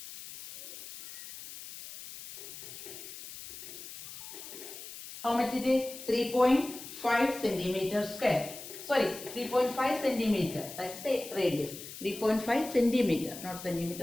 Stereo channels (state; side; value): noise; left; hiss, 12 dB below the sound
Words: how much it is? 3.5 centimeter square. Sorry, 3.5 centimeter. That's the radius. 3.5 centimeter, not